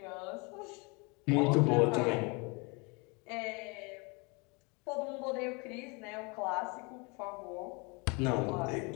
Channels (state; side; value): quieter; right; 30.0 dB